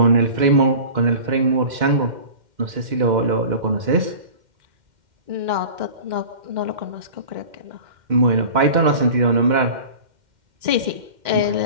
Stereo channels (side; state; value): left; late; 2.1 ms